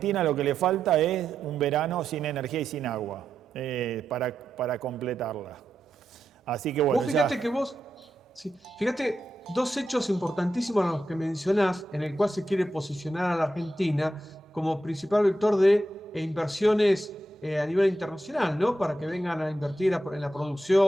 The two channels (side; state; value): both; normal; correlation 0.86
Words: lo que le falta es un verano sin energía y sin agua para completarla. Así que bueno, Vos ya. fíjate que vos, sí, fíjate, dos hechos importantísimos a los que mencionás, en el cual se quiere posicionar a la Argentina como principal vector de inversiones a nivel internacional, ¿no? Para que vengan a invertir en la